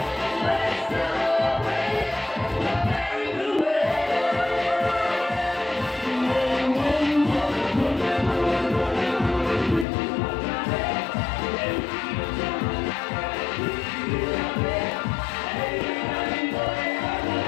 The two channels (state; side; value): drops out; right; at 9.9 s